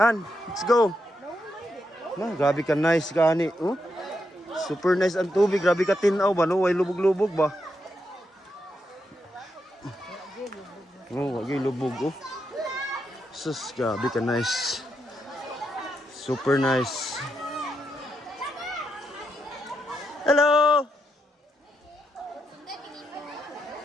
let's go. Ma, grabe ka nice ka ani, oh. Super nice ang tubig, grabe ka tinaw ba, no? Way lubog-lubog ba? Oh, wagi lubog, oh. Sus, grabe ka nice. Super nice. Hello!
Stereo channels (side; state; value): both; normal; correlation 0.82